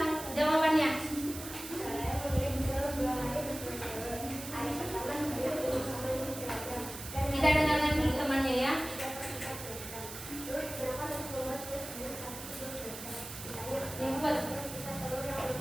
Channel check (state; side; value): noise; right; hiss, 10 dB below the sound